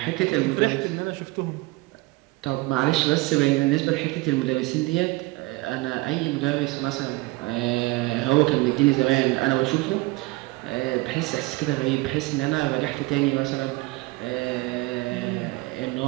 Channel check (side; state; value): left; quieter; 22.5 dB